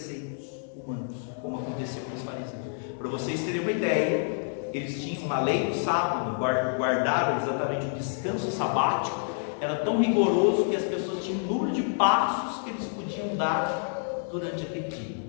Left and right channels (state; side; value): silent; right; digital silence